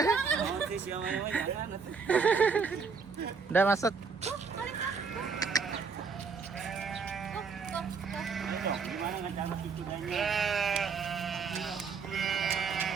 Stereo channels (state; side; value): quieter; left; 5.3 dB